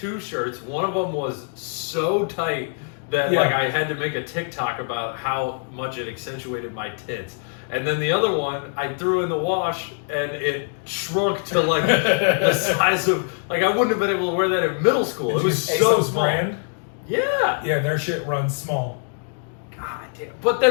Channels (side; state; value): right; silent; 56 dB below the other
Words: shirts. One of them was so tight that like I had to make a TikTok about how much it accentuated my tits. And then the other one, I threw in the wash, and it shrunk to like the size of, like I wouldn't have been able to wear that in middle school. It was so ASOS small. Brand? Yeah. Yeah, their shit runs small. God damn. But